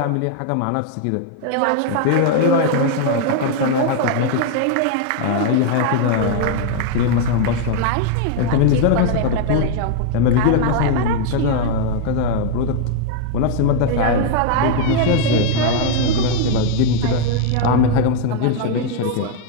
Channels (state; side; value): different; both; correlation 0.00